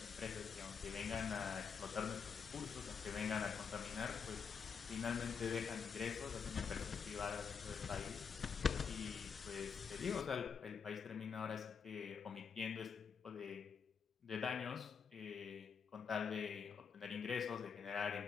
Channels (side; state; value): right; quieter; 6.3 dB